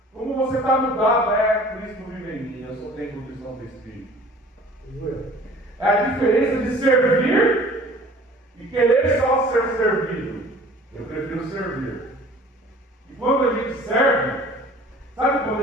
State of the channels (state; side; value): normal; both; correlation 0.48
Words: Como você está mudado? É, Cristo vive em mim, eu só tenho condição do Espírito. É a diferença de servir e querer só ser servido. Eu prefiro servir. E quando a gente serve, sabe quando